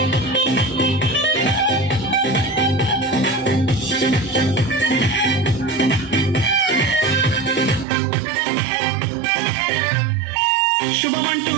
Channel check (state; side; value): drops out; left; at 7.9 s